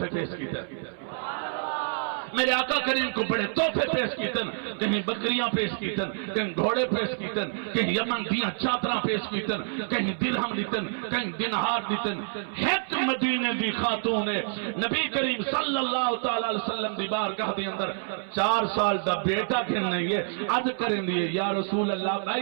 پیش کیتے میرے آقا کریم کو بڑے تحفے پیش کیتن کہیں بکریاں پیش کیتن کہیں گھوڑے پیش کیتن کہیں یمن دیاں چادراں پیش کیتن کہیں درہم دیتن کہیں دینار دیتن ایک مدینے دی خاتون نے نبی کریم صلی اللہ تعالی علیہ وسلم دی بارگاہ دے اندر 4 سال دا بیٹا کھن نہیں ہے عرض کریں دیئے یا رسول اللہ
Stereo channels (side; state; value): left; silent; 58 dB below the other